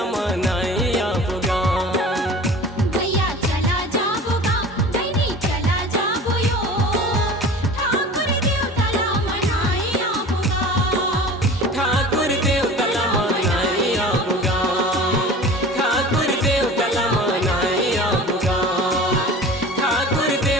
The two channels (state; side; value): normal; both; correlation 0.40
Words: मनाई आबोगा भैया चला जाबोगा बहनी चला जाबो यो ठाकुर देवता ला मनाई आबोगा ठाकुर देवता ला मनाई आबोगा ठाकुर देवता ला मनाई आबोगा ठाकुर